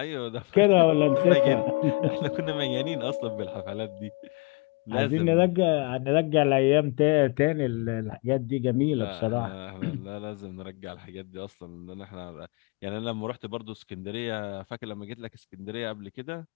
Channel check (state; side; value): quieter; right; 27.7 dB